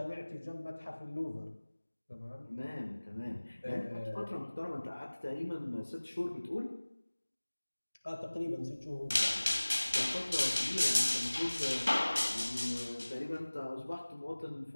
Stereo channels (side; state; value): both; inverted; correlation -1.00